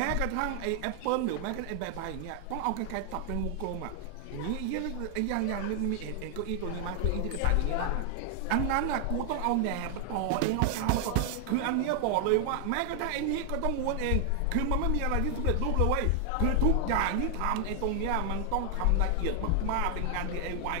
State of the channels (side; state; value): both; different; correlation 0.00